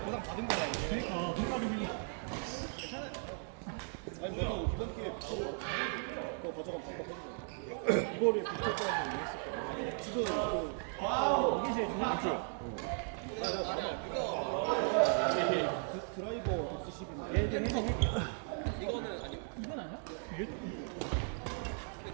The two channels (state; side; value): silent; left; 53 dB below the other